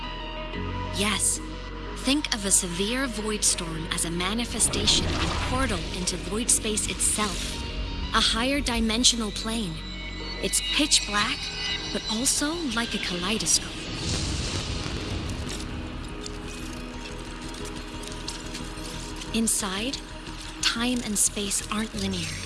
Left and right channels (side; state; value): both; identical; correlation 1.00